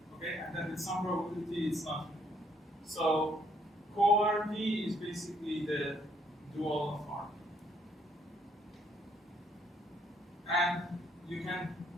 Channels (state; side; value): normal; both; correlation 0.68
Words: Okay, and then with some probability, it's not. So co-RP is basically the dual of RP. And you can